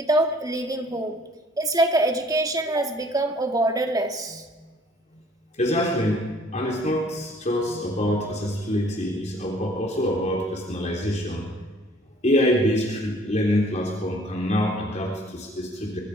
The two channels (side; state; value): both; normal; correlation 0.56